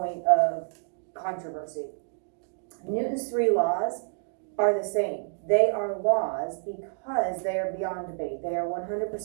of controversy. Newton's 3 laws are the same. They are laws because they are beyond debate. They are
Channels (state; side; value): silent; left; digital silence